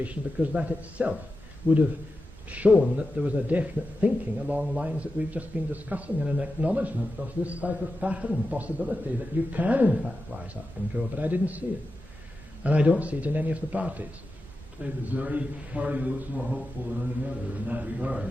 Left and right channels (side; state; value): both; normal; correlation 0.91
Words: because that itself would have shown that there was a definite thinking along lines that we've just been discussing, and an acknowledgement of this type of pattern possibility that you can in fact rise up and grow, but I didn't see it. And I don't see it in any of the parties. Is there any party that looks more hopeful than any other in that